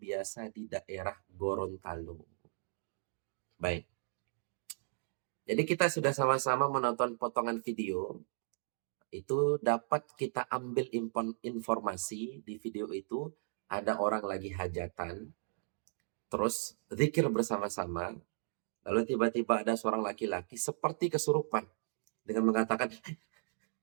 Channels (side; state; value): left; silent; digital silence